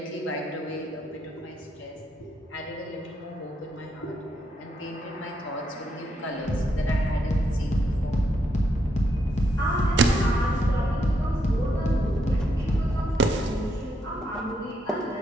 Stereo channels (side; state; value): both; normal; correlation 0.78